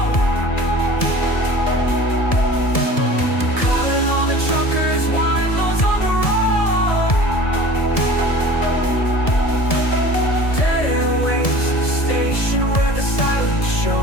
Calling all the truckers, YMOs on the road. Dead airwaves, a station where the silence show.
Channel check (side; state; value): right; late; 1.7 ms